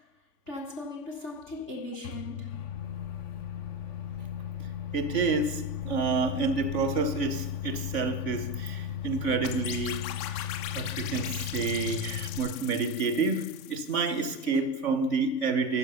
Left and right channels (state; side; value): late; right; 3.5 ms